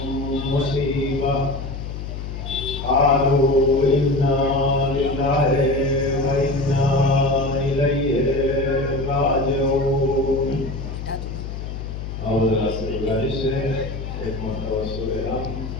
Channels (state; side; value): noise; left; hum, 7 dB below the sound